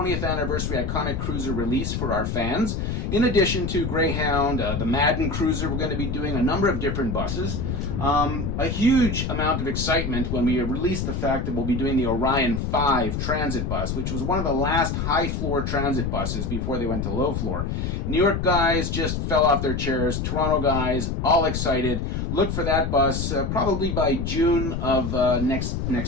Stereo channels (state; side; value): noise; left; rumble, 2 dB below the sound